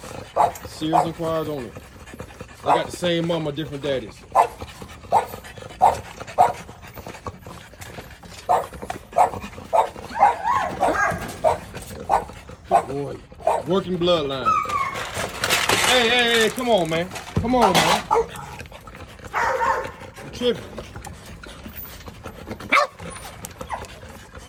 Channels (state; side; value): identical; both; correlation 1.00